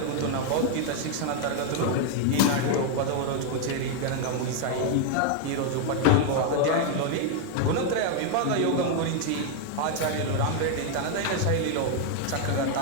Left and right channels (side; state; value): both; different; correlation 0.00